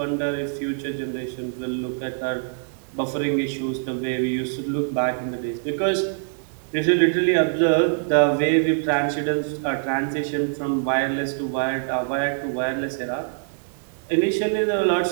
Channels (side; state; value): left; silent; digital silence